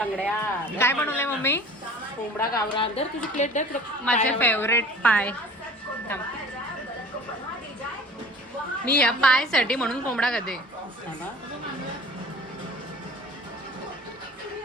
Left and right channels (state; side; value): normal; both; correlation 0.44